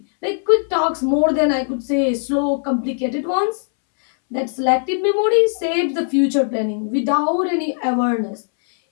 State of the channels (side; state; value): right; silent; 66 dB below the other